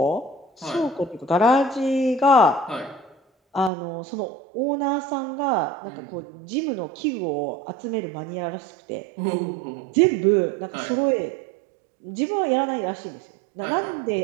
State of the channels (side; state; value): left; drops out; at 3.7 s